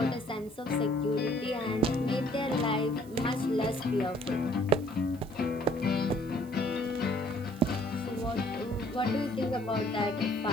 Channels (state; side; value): noise; right; hiss, 25 dB below the sound